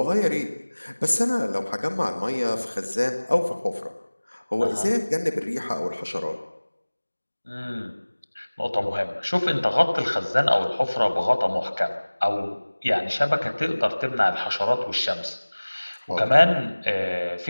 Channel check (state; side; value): inverted; both; correlation -1.00